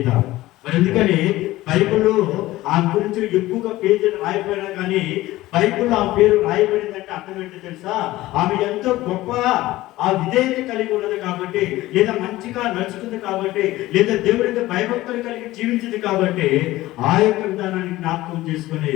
మరి ఎందుకని బైబిల్లో ఆమె గురించి ఎక్కువగా పేజీలు రాయబడినా కానీ బైబిల్లో ఆ పేరు రాయబడిందంటే అర్థం ఏంటో తెలుసా? ఆమె ఎంతో గొప్ప ఆ విధేయత కలిగి ఉన్నది కాబట్టి, లేదా మంచిగా నడుచుకుంది కాబట్టి, లేదా దేవుడికి భయభక్తులు కలిగి జీవించింది కాబట్టి ఆ యొక్క విధానాన్ని జ్ఞాపకం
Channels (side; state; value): right; quieter; 17.1 dB